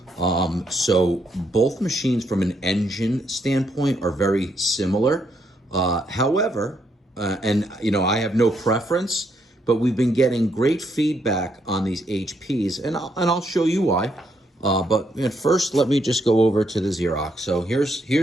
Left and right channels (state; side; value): normal; both; correlation 0.75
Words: So both machines from an engine standpoint are very similar. However, and you know, I have no preference, but we've been getting great feedback on these HPs, and I'll show you why. But first, let me just go over to the Xerox. So